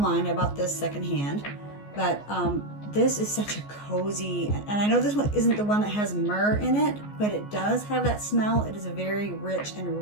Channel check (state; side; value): late; right; 14 ms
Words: I bought this secondhand, but this is such a cozy, and I know this one isn't the one that has myrrh in it, but it does have that smell. It is a very rich